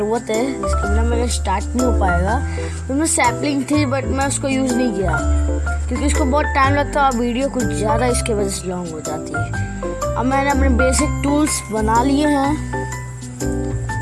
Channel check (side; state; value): both; identical; correlation 1.00